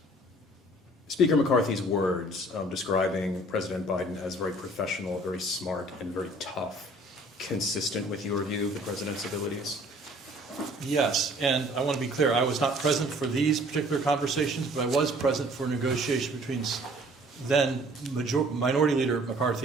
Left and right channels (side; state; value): both; normal; correlation 0.54